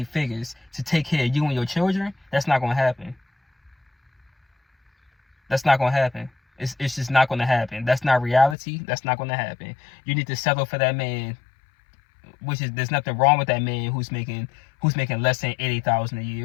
figures to take care of you and your children. That's not gonna happen. That's not gonna happen. It's just not gonna happen. That's not reality. That's not gonna happen. You need to settle for that man. There's nothing wrong with that man who's making less than $80,000 a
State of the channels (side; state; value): right; drops out; at 8.6 s